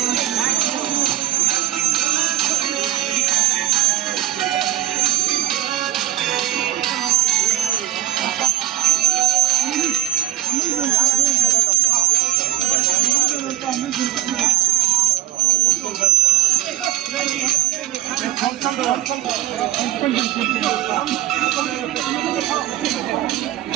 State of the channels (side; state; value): left; quieter; 14.3 dB